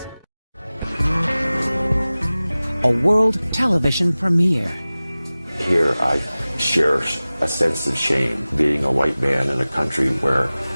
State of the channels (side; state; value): both; inverted; correlation -0.98